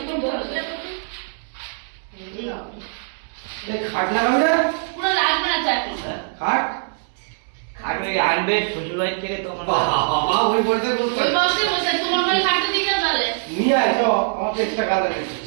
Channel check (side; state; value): left; silent; 64 dB below the other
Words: বসে খাট লাগাবো না পুরো লাগবে না চাকরি খাট খাট ওই আনবে শ্বশুরবাড়ি থেকে তো বাবা ওই বসে বলতে ওই বসে বসে তোমার ঘরে খাটতে দিয়ে যাও তাহলে নিয়ে আয় তো আমাকে এক্সট্রা কাজ লাগে